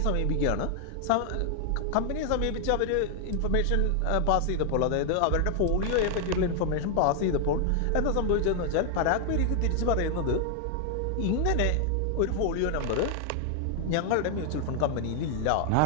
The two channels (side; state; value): both; different; correlation 0.00